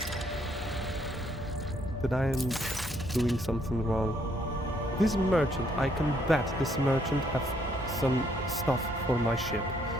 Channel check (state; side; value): normal; both; correlation 0.69